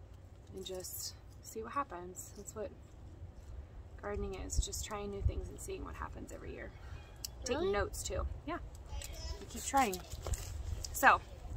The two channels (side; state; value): both; identical; correlation 1.00